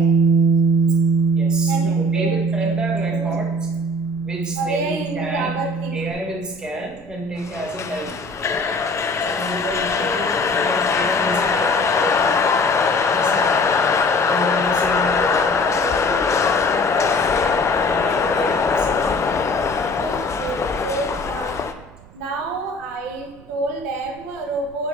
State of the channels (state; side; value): noise; right; rumble, 23 dB below the sound